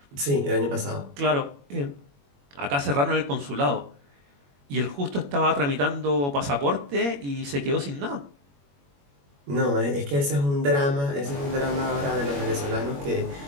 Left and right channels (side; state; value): left; late; 21 ms